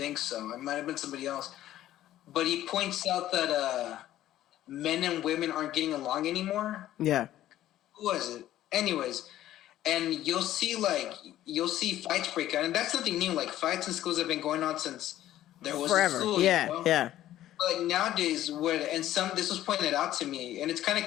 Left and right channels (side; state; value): right; quieter; 13.4 dB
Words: so. It might have been somebody else. But he points out that men and women aren't getting along anymore. Yeah. Who was it? Anyways, and you'll see fights break out, and that's nothing new. Like, fights in schools have been going on since there was Forever. a school. Yeah, you know? yeah. But nowadays, this was pointed out to me, and it's kind of